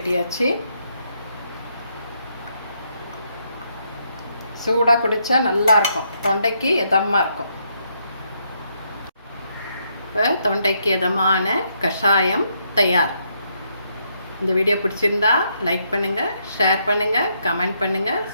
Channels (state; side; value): inverted; both; correlation -0.76